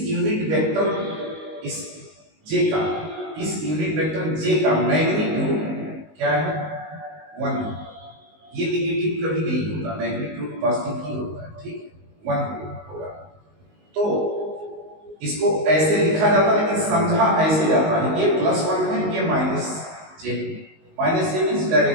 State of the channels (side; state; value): left; late; 19 ms